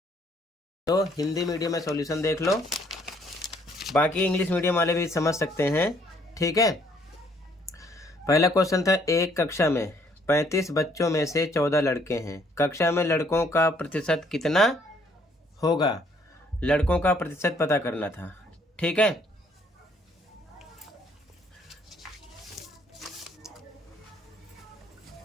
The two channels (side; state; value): both; normal; correlation 0.65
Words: तो हिंदी मीडियम में सॉल्यूशन देख लो, बाकी इंग्लिश मीडियम वाले भी समझ सकते हैं, ठीक है। पहला क्वेश्चन था, एक कक्षा में 35 बच्चों में से 14 लड़के हैं, कक्षा में लड़कों का प्रतिशत कितना होगा। लड़कों का प्रतिशत पता करना था, ठीक है।